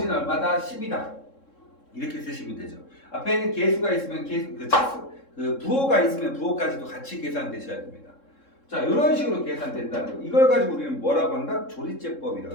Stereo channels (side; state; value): right; late; 3.7 ms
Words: 얼마다? 10이다. 이렇게 쓰시면 되죠. 앞에는 계수가 있으면 부호가 있으면 부호까지도 같이 계산되셔야 됩니다. 자, 이런 식으로 계산된다는 거. 이걸 가지고 우리는 뭐라고 한다? 조리제법이라고